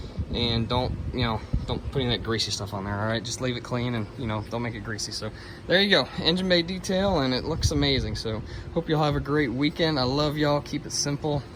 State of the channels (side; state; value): both; identical; correlation 1.00